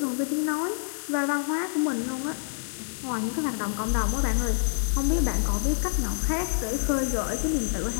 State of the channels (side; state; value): right; silent; digital silence